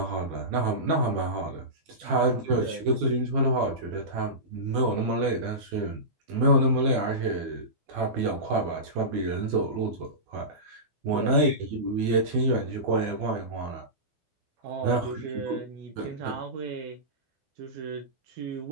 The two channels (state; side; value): late; left; 12 ms